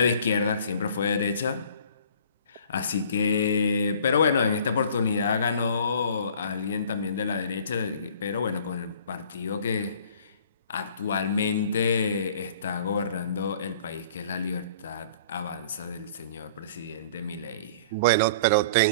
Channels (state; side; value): inverted; both; correlation -0.51